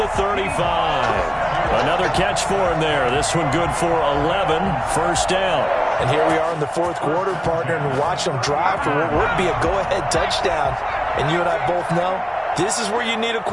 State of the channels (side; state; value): both; identical; correlation 1.00